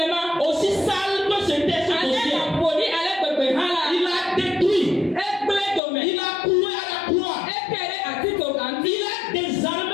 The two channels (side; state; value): right; drops out; at 5.8 s